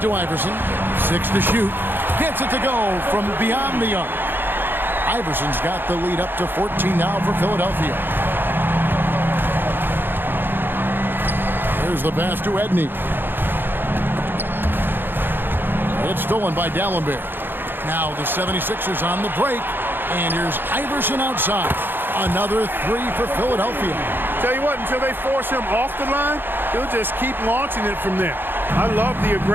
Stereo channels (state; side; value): late; left; 0.098 ms